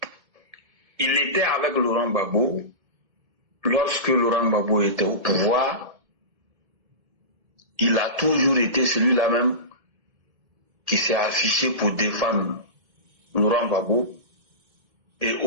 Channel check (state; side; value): late; left; 1.8 ms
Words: Il était avec Laurent Gbagbo. Lorsque Laurent Gbagbo était au pouvoir, il a toujours été celui-là même qui s'est affiché pour défendre Laurent Gbagbo. Et